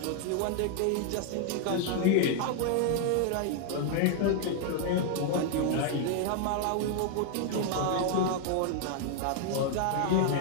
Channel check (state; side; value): different; both; correlation 0.00